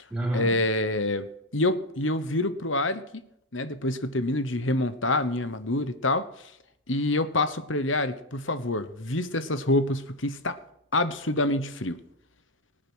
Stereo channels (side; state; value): both; normal; correlation 0.09